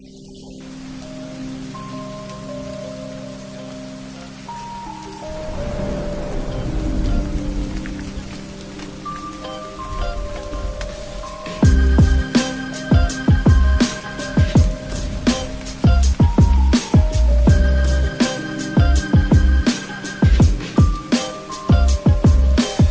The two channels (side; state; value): both; identical; correlation 1.00